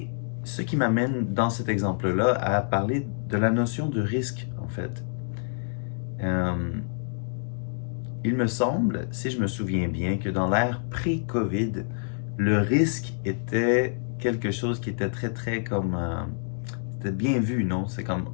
ce qui m'amène dans cet exemple-là à parler de la notion de risque, en fait. Il me semble, si je me souviens bien, que dans l'ère pré-COVID, le risque était quelque chose qui était très, très comme... c'était bien vu, non? C'est comme,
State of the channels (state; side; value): silent; right; digital silence